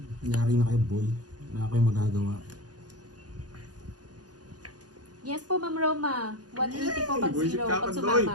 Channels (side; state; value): left; late; 0.69 ms